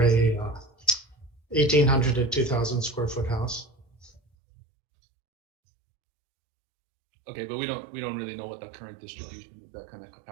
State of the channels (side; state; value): left; drops out; at 4.2 s